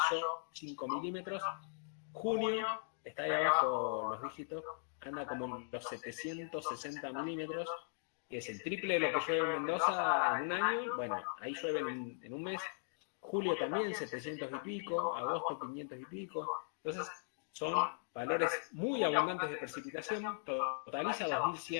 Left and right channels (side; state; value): right; silent; digital silence